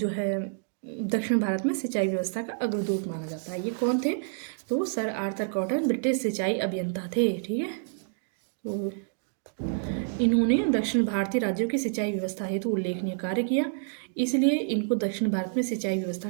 है दक्षिण भारत में सिंचाई व्यवस्था का अग्रदूत माना जाता है। ये कौन थे? तो सर आर्थर कॉटन ब्रिटिश सिंचाई अभियंता थे। ठीक है, तो इन्होंने दक्षिण भारतीय राज्यों की सिंचाई व्यवस्था हेतु उल्लेखनीय कार्य किया, इसलिए इनको दक्षिण भारत में सिंचाई व्यवस्था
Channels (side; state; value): left; silent; digital silence